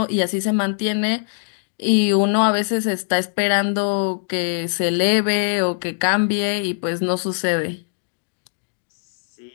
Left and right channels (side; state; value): right; silent; digital silence